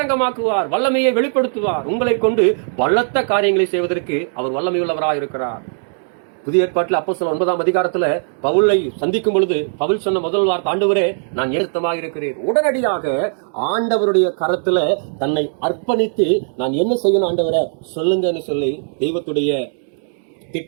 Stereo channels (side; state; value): left; silent; digital silence